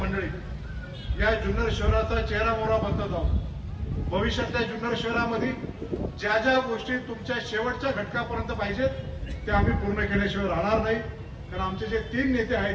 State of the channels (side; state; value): both; identical; correlation 1.00